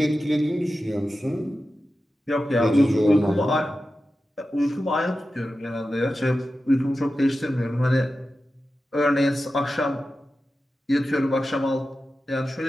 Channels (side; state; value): both; normal; correlation 0.93